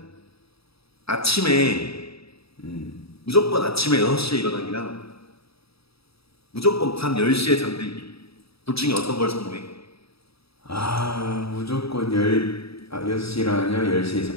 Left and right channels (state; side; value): late; right; 0.77 ms